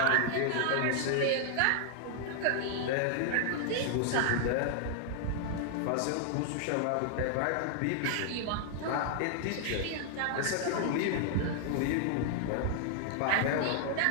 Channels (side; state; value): both; different; correlation -0.01